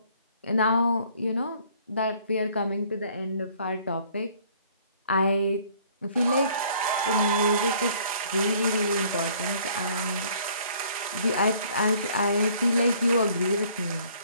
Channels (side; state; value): both; inverted; correlation -0.58